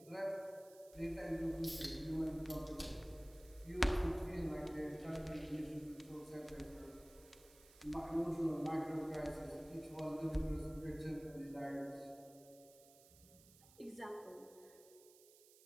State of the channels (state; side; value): noise; right; hiss, 22 dB below the sound